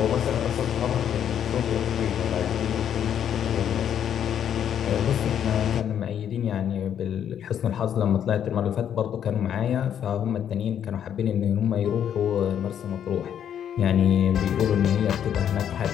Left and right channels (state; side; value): quieter; right; 9.3 dB